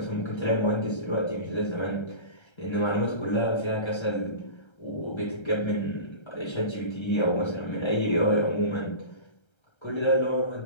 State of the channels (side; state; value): right; late; 1.3 ms